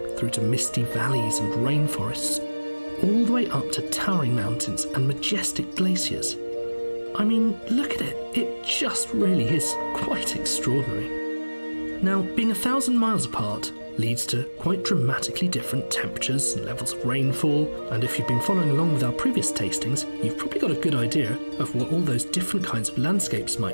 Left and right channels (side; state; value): both; inverted; correlation -1.00